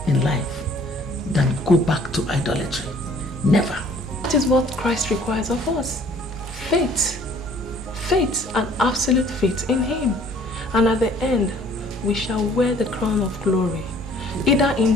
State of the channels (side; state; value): both; normal; correlation 0.56